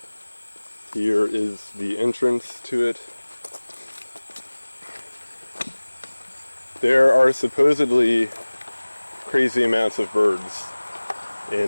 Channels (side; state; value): both; inverted; correlation -1.00